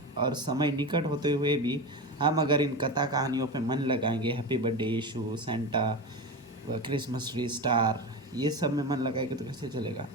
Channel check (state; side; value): normal; both; correlation 0.22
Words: और समय निकट होते हुए भी हम अगर इन कथा कहानियों पे मन लगाएंगे, हैप्पी बर्थडे यीशु, सेंटा, क्रिसमस ट्री, स्टार, ये सब में मन लगाएंगे तो कैसे चलेगा।